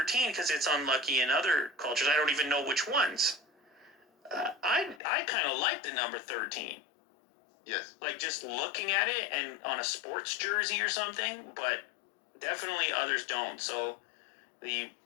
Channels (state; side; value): drops out; right; at 5.0 s